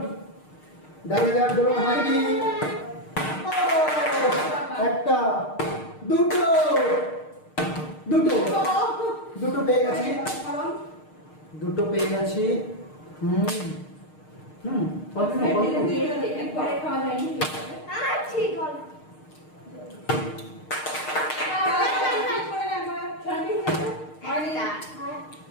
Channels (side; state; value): right; late; 6.5 ms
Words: দেখা যাক দোলন হয়নি। একটা দুটো দুটো দুটো পেয়ে গেছি, দুটো পেয়ে গেছি।